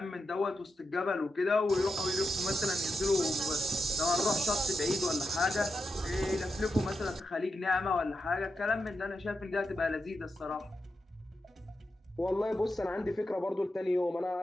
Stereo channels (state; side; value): normal; both; correlation 0.87